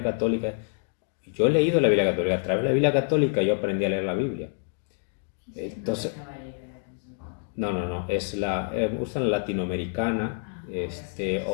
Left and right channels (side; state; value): right; silent; 60 dB below the other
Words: católica, yo he leído la Biblia católica, a través de la Biblia católica yo aprendí a leer la Biblia. Entonces, no, usan la latinoamericana,